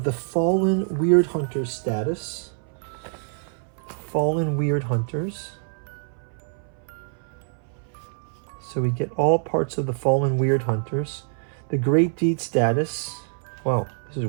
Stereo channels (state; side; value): silent; left; 60 dB below the other